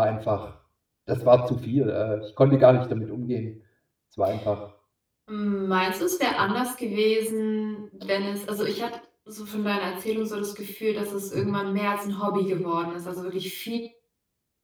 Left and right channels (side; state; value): both; identical; correlation 1.00